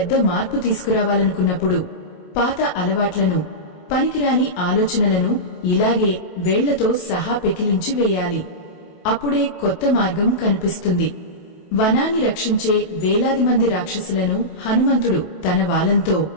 మార్పు తీసుకురావాలనుకున్నప్పుడు పాత అలవాట్లను, పనికిరాని ఆలోచనలను ఇలాగే వేళ్లతో సహా పెకిలించి వేయాలి. అప్పుడే కొత్త మార్గం కనిపిస్తుంది. వనాన్ని రక్షించే వేలాది మంది రాక్షసులను హనుమంతుడు తన వాలంతో,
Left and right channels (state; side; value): late; right; 28 ms